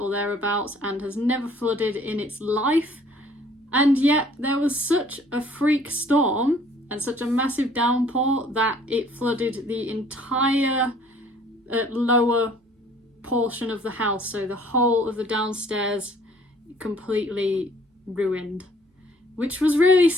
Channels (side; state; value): both; normal; correlation 0.57